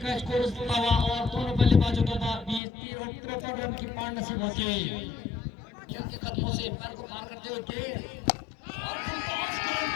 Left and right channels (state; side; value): drops out; right; at 2.6 s